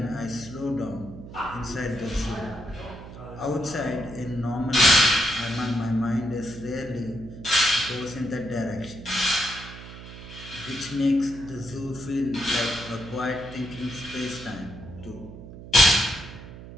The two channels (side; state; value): right; noise; hum, 14 dB below the sound